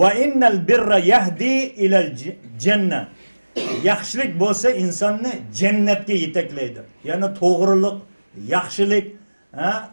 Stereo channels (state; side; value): inverted; both; correlation -1.00